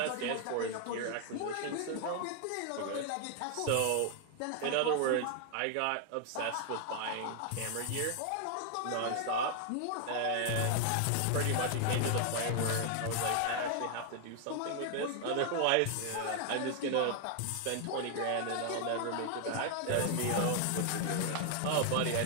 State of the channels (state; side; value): different; both; correlation 0.00